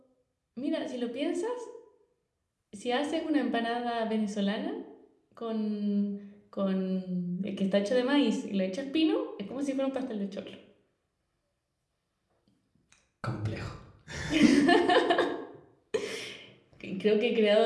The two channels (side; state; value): both; identical; correlation 1.00